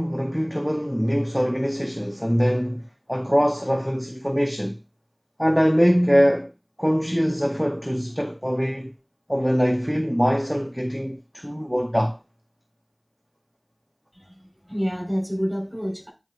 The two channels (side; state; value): both; identical; correlation 1.00